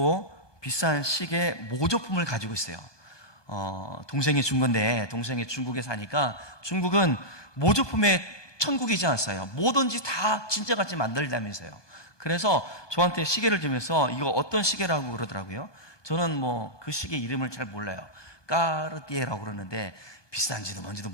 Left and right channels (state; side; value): late; right; 1.2 ms